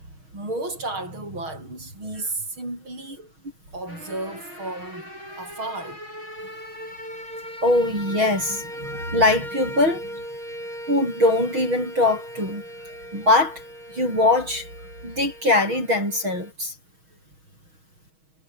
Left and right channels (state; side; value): late; left; 6.3 ms